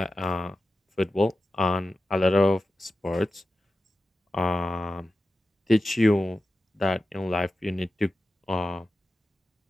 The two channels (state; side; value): normal; both; correlation 0.93